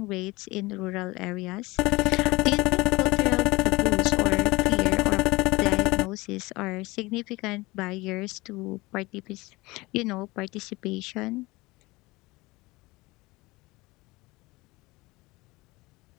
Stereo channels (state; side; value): quieter; right; 22.0 dB